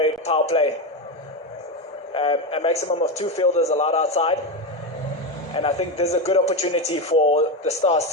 play, a maximum of 2 fielders allowed outside, and I think there's a good opportunity for the Stars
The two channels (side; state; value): both; normal; correlation 0.14